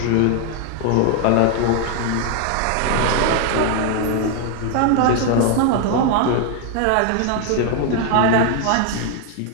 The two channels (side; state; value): both; different; correlation 0.01